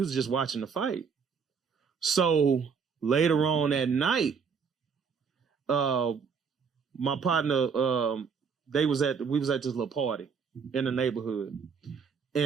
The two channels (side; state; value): left; quieter; 6.0 dB